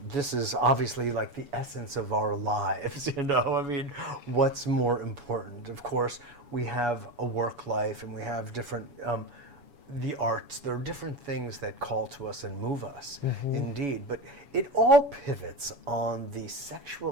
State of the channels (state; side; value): late; left; 7.1 ms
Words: this is obviously like the essence of our lives, what's more important? Of course, we have a work life and we have different, the arts, there are different things that call to us and move us, indeed, but it all pivots on the